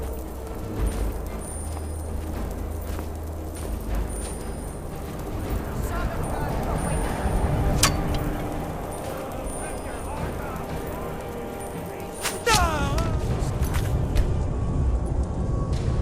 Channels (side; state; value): both; identical; correlation 1.00